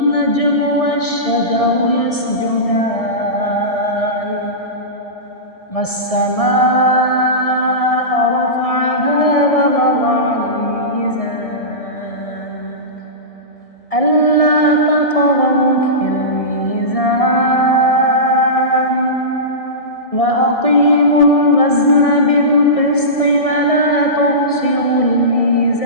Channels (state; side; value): late; right; 1.6 ms